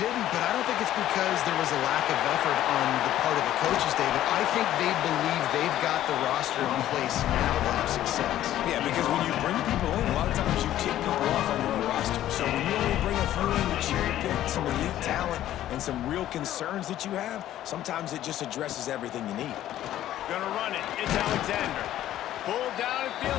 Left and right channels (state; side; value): quieter; right; 12.9 dB